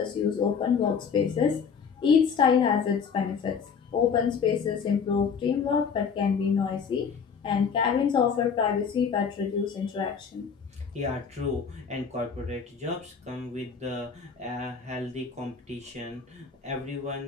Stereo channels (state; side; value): quieter; right; 6.2 dB